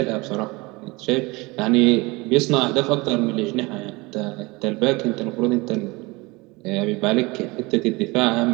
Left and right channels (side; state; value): left; quieter; 24.2 dB